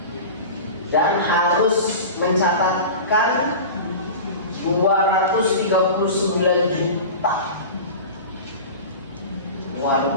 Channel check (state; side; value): inverted; both; correlation -0.32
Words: Dan harus mencatatkan 239 juta